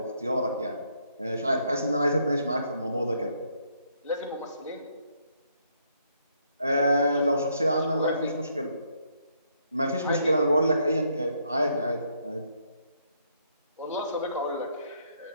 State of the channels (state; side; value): inverted; both; correlation -0.72